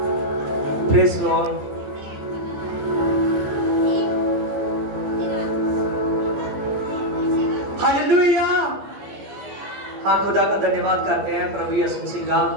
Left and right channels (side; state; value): left; late; 14 ms